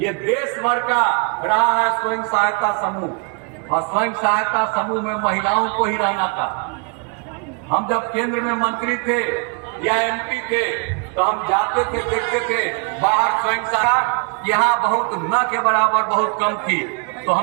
देश भर का रहा है स्वयं सहायता समूह, और स्वयं सहायता समूह में महिलाओं को ही रहना था। हम जब केंद्र में मंत्री थे या एमपी थे तो हम जाते थे, देखते थे बाहर स्वयं सहायता यहाँ बहुत न के बराबर बहुत कम थी। तो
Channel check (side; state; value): left; quieter; 34.7 dB